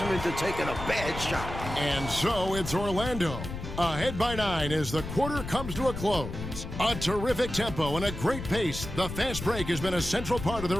into taking a bad shot. And so it's Orlando. Ahead by 9 as the quarter comes to a close. A terrific tempo and a great pace. The fast break has been a central part of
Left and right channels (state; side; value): noise; left; rumble, 8 dB below the sound